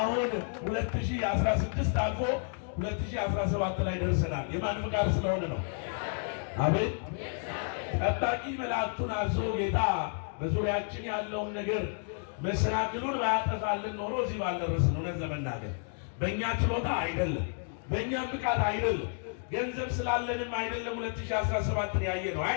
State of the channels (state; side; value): silent; right; 57 dB below the other